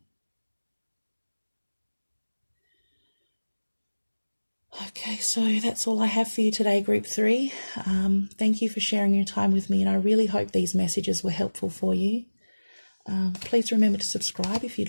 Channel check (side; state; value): both; inverted; correlation -1.00